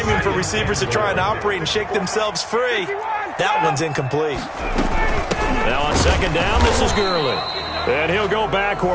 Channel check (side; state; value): both; identical; correlation 1.00